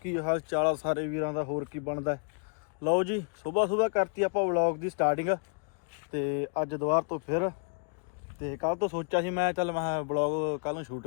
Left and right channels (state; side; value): quieter; right; 38.9 dB